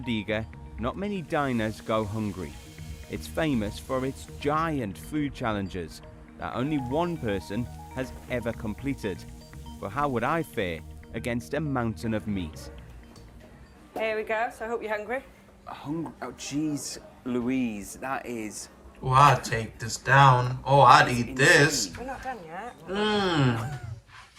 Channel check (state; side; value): identical; both; correlation 1.00